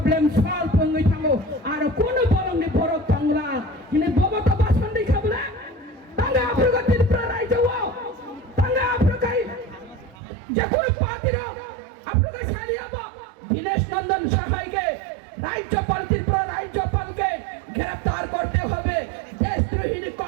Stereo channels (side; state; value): left; drops out; at 10.2 s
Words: সলভ হই থামো আর কোন বলংনি বড় তাংলা কিনে বব তো বাসন দেখা বলে তাঙ্গা আফ্রিকার প্রায় যাও তাঙ্গা আফ্রিকায় যে কোন পার্টির আফ্রিকায় ছাড়িয়াবো দীনেশ নন্দন সহায়কে রাজ্যপালকে গ্রেফতার করতে হবে দেশদ্রোহী